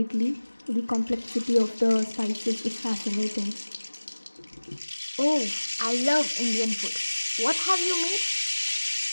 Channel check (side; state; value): both; inverted; correlation -1.00